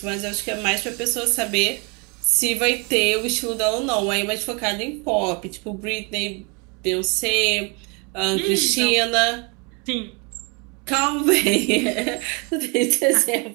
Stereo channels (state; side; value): quieter; left; 32.0 dB